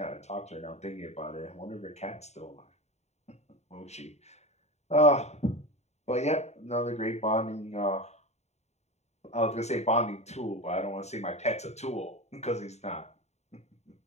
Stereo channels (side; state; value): right; late; 0.32 ms